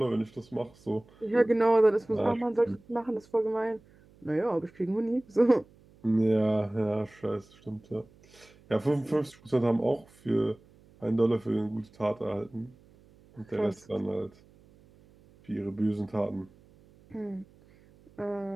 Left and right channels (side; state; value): right; noise; hum, 28 dB below the sound